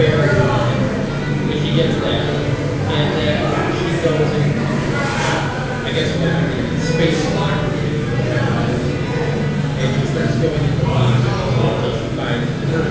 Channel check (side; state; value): both; identical; correlation 1.00